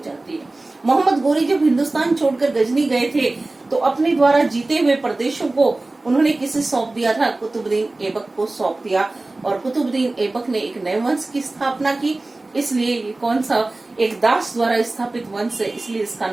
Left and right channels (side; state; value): left; quieter; 3.0 dB